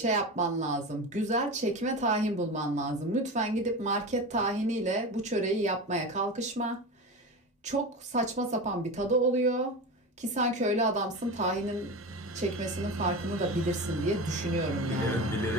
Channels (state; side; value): normal; both; correlation 0.26